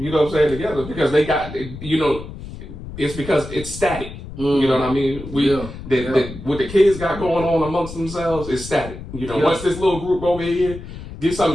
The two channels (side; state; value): left; noise; rumble, 12 dB below the sound